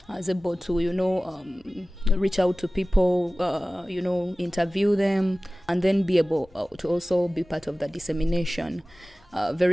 I was able to, reach out to people, interview them, and then be able to also be part of the dissemination.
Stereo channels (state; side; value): normal; both; correlation 0.97